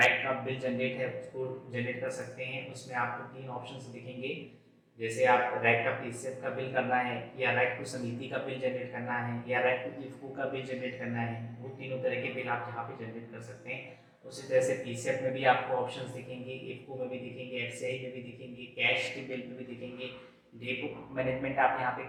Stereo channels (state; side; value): identical; both; correlation 1.00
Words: का बिल जनरेट है उसको जनरेट कर सकते हैं। उसमें आपको तीन ऑप्शंस दिखेंगे, जैसे आप रैक का पीसीएफ का बिल करना है, या रैक टू समिति का बिल जनरेट करना है, या रैक टू इफको का बिल जनरेट करना है। वो तीनों तरह के बिल आप यहाँ पे जनरेट कर सकते हैं। उसी तरह से पीसीएफ में भी आपको ऑप्शंस दिखेंगे, इफको में भी दिखेंगे, एफसीआई में भी दिखेंगे, कैश के बिल में भी दिखेंगे। डेपो मैनेजमेंट आप यहाँ पे